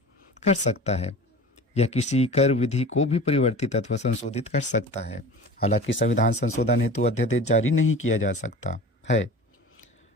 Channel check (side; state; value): both; normal; correlation 0.37